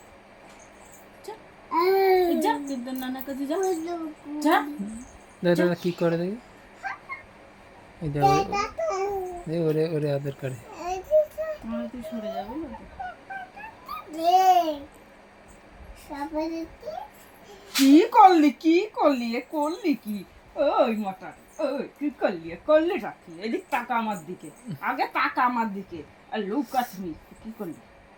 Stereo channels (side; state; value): both; identical; correlation 1.00